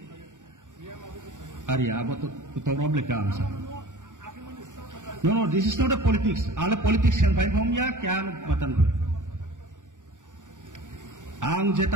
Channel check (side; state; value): left; late; 0.87 ms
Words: अरे अब तो रॉब लेके आंसा no this is not a politics आले पॉलिटिशियन भाई हम या क्या मतन आंग